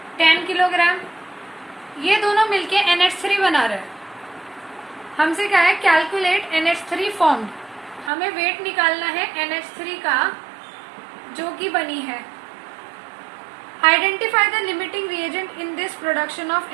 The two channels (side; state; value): left; drops out; at 8.1 s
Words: 10 किलोग्राम। ये दोनों मिलके NH3 बना रहे हैं। हमसे क्या है, कैलकुलेट NH3 फॉर्म्ड। हमें वेट निकालना है NH3 का जो कि बनी है। Identify the limiting reagent in this production of